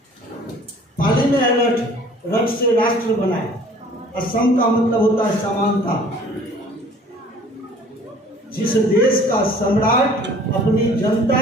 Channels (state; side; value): normal; both; correlation 0.52